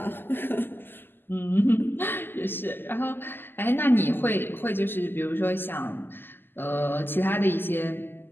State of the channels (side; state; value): right; late; 0.097 ms